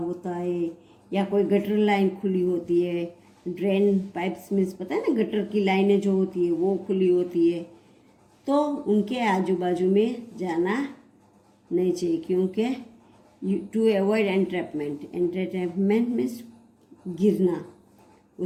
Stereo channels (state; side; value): identical; both; correlation 1.00